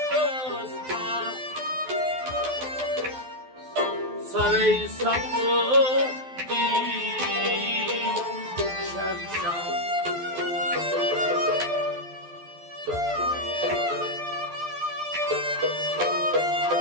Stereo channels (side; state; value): left; late; 12 ms